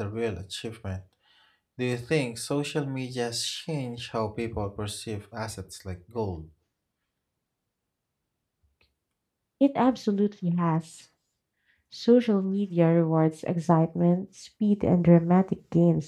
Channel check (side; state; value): both; identical; correlation 1.00